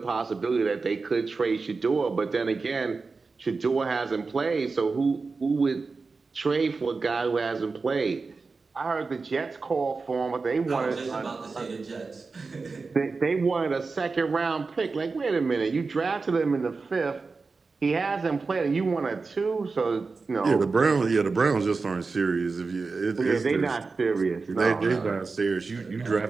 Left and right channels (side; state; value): left; quieter; 4.2 dB